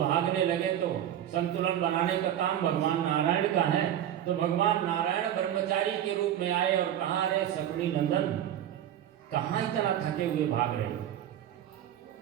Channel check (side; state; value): left; quieter; 11.0 dB